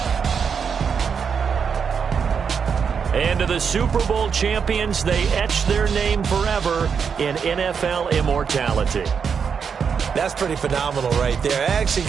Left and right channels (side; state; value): left; quieter; 6.5 dB